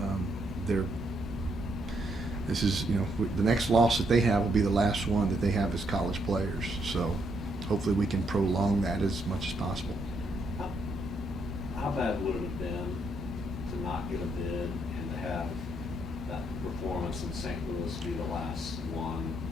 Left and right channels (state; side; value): normal; both; correlation 0.75